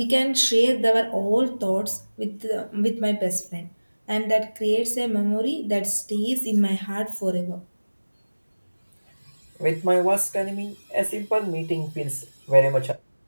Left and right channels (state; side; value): inverted; both; correlation -1.00